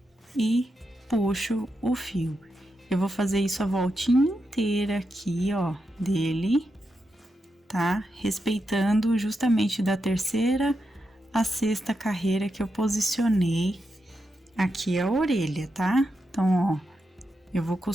e puxo o fio. Eu vou fazer isso a voltinha inteira aqui, ó, dele, tá? Respeitando justamente da terceira a sexta carreira que eu posicionei aqui a orelha, tá? Então, ó, eu vou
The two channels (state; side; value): normal; both; correlation 0.86